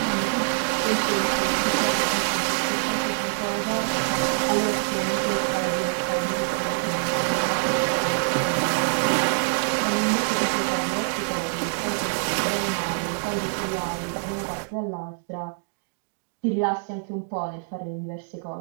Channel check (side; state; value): left; silent; digital silence